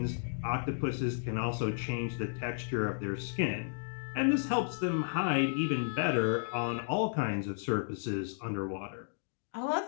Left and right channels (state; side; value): silent; right; digital silence